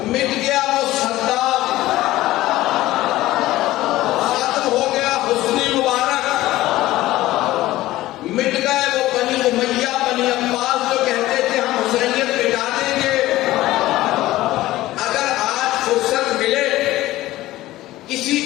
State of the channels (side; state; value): right; quieter; 16.4 dB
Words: مٹ گیا وہ صدام، ختم ہو گیا حسنی مبارک، مٹ گئے وہ بنی امیہ بنی عباس جو کہتے تھے ہم حسینیت مٹا دیں گے۔ اگر آج فرصت ملے کسی